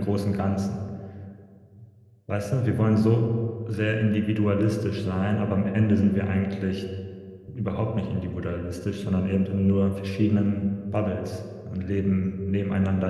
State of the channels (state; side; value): identical; both; correlation 1.00